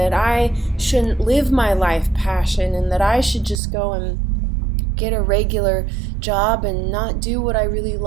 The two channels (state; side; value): drops out; left; at 3.6 s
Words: I shouldn't live my life passion and that I should just go and get a regular job and not do what I really